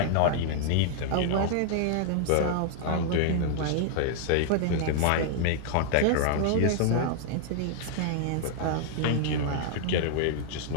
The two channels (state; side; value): different; both; correlation -0.01